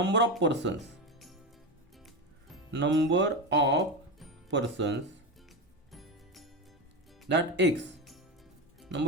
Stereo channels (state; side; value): normal; both; correlation 0.17